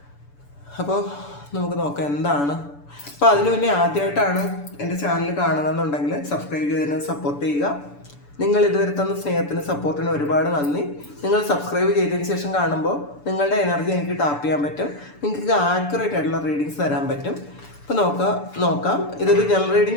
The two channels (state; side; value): late; right; 6.9 ms